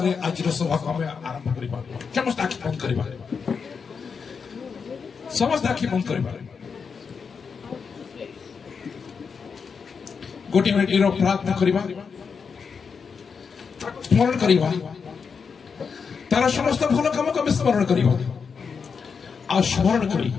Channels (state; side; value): quieter; right; 5.8 dB